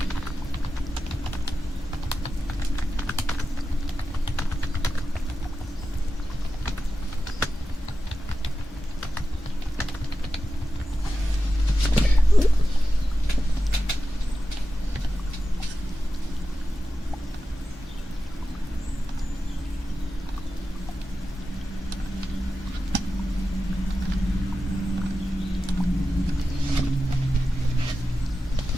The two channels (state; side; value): normal; both; correlation 0.92